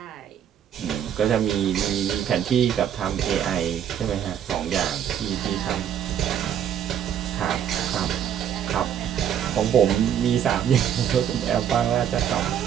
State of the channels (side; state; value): left; quieter; 9.3 dB